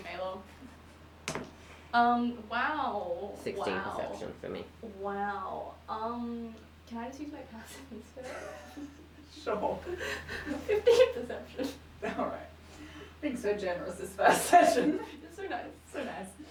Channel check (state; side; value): identical; both; correlation 1.00